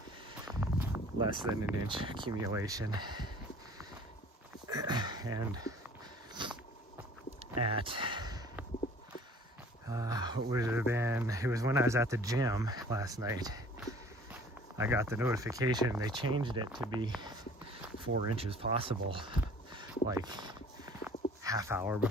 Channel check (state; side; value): normal; both; correlation 0.50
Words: less than an inch accumulation. And at what would it have been, it was when I was at the gym last night, I got the notification they changed it to be 4 inches possible, like half hour